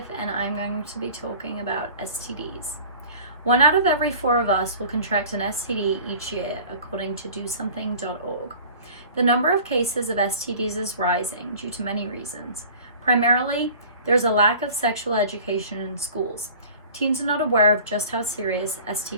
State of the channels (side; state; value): both; inverted; correlation -0.44